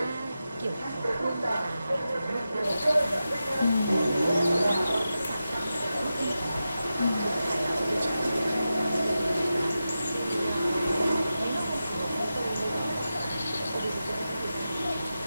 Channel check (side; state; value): both; inverted; correlation -0.91